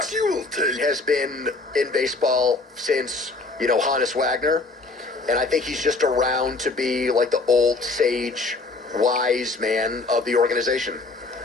been in baseball since, Hannes Wagner. And I think he's just around to be like the old sage, wise man of the organization.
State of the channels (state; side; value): quieter; right; 3.5 dB